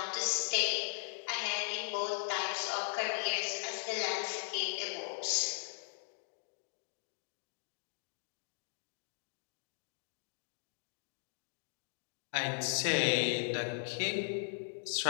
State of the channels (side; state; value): right; silent; digital silence